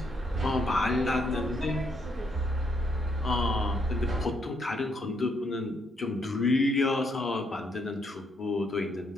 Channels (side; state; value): both; normal; correlation 0.74